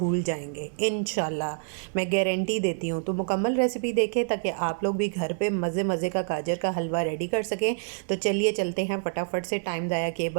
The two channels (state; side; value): silent; left; digital silence